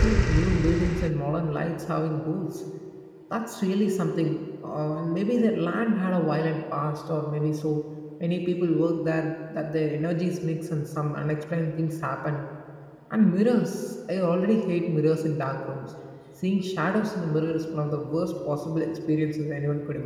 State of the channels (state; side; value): identical; both; correlation 1.00